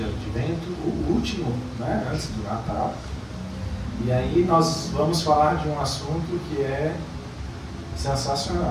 advento, o último, né, antes do Natal. E aí nós vamos falar de um assunto que é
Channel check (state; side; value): identical; both; correlation 1.00